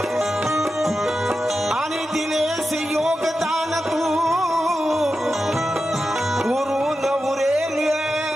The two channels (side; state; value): both; normal; correlation 0.91